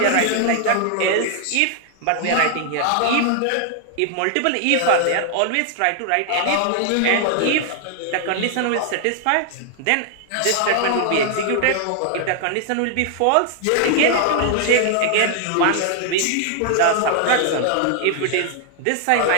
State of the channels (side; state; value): both; different; correlation 0.00